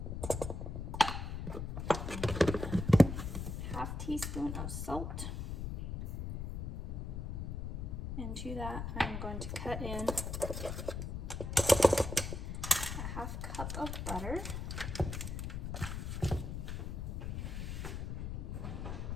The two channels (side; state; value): left; noise; rumble, 4 dB below the sound